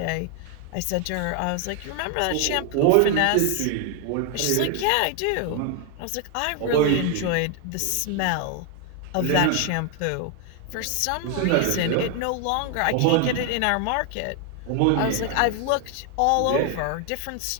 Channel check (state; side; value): different; both; correlation 0.01